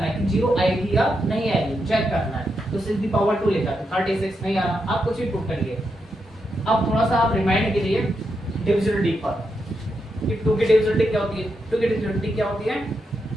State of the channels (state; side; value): normal; both; correlation 0.84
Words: है कि 0 आएगी या नहीं आएगी, चेक करना है। तो 6 दी पावर 2 लिखा तो 36 नहीं आ रहा, आप कुछ भी पुट करिए। अब थोड़ा सा आप रिमाइंड कीजिए डिविजिबिलिटी पर कि 2 की डिविजिबिलिटी क्या होती है। 2 की डिविजिबिलिटी क्या होती है?